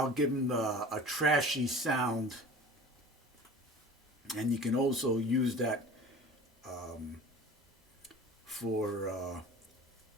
give them a trashy sound, and you can also use that for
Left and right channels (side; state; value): both; normal; correlation 0.40